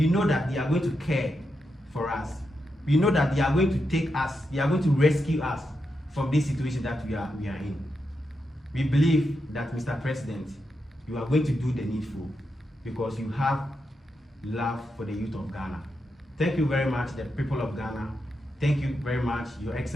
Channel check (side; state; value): both; normal; correlation 0.85